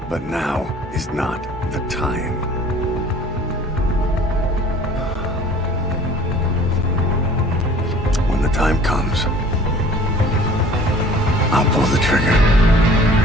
But now is not the time. When the time comes, I'll pull the trigger.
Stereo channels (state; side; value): normal; both; correlation 0.49